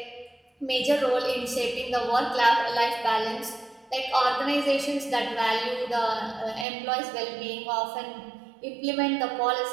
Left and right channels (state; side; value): drops out; left; at 6.7 s